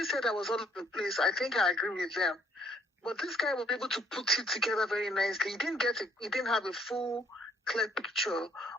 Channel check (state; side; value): normal; both; correlation 0.65